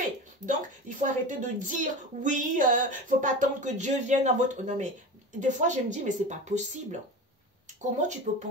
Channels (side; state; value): both; normal; correlation 0.29